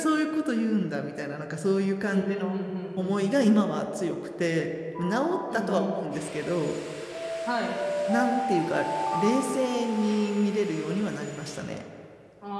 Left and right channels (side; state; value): both; identical; correlation 1.00